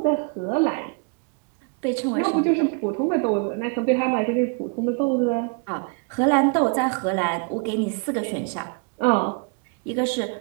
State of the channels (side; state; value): left; quieter; 35.0 dB